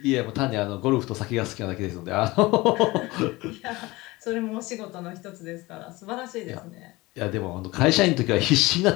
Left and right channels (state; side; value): quieter; right; 21.2 dB